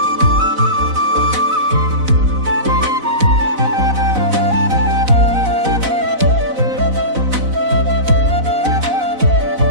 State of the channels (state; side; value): late; left; 4.0 ms